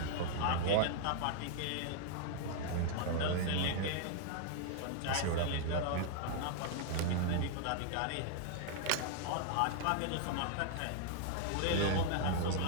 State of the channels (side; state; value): both; different; correlation 0.00